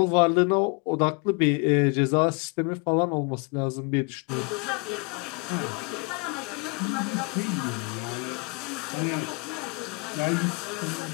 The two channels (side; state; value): right; quieter; 32.3 dB